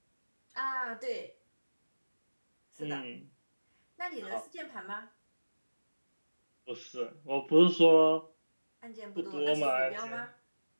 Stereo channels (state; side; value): inverted; both; correlation -1.00